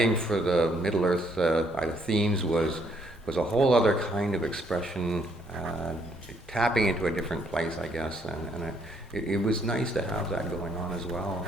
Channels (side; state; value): both; normal; correlation 0.69